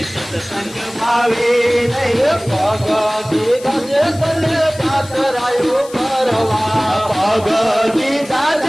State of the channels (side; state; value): left; noise; hiss, 19 dB below the sound